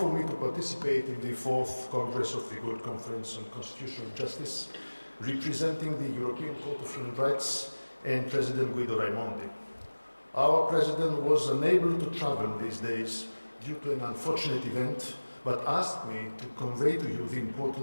me to participate in the 4th Congress of the World Conference on Constitutional Justice, representing the European Court of Human Rights and President Guido Raimondi. Our President was unable to travel these days due to an unfortunate event, but asked me to convey to you the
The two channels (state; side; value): inverted; both; correlation -1.00